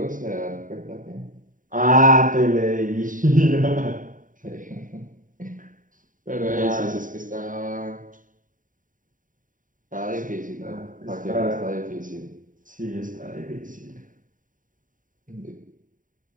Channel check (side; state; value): left; late; 0.39 ms